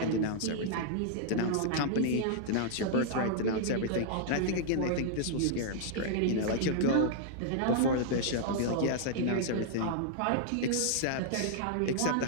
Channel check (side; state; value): both; different; correlation -0.01